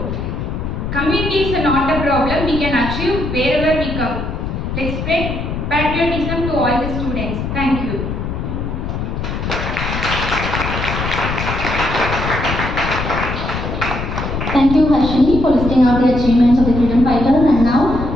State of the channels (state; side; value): noise; left; rumble, 4 dB below the sound